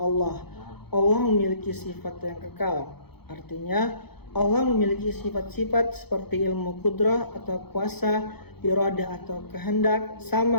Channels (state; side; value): late; right; 0.97 ms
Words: Allah. Allah memiliki sifat yang kekal. Artinya Allah memiliki sifat-sifat seperti ilmu kudrah atau kuasa, iradah atau kehendak,